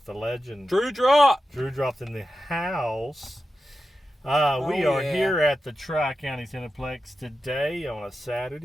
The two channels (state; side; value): normal; both; correlation 0.91